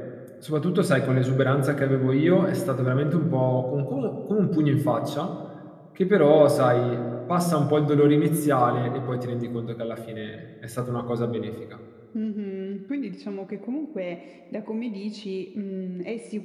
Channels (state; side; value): identical; both; correlation 1.00